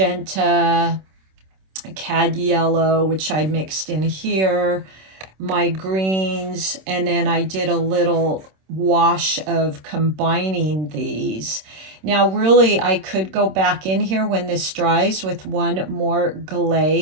cad yellow, which I mixed in here, my greens, and then I did a little wash of combining these. Now, really, I could go back in here when this dries with one more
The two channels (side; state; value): left; late; 26 ms